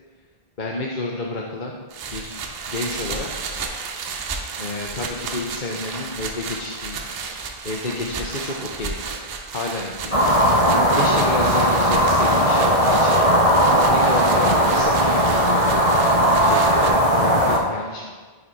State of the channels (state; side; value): late; right; 1.6 ms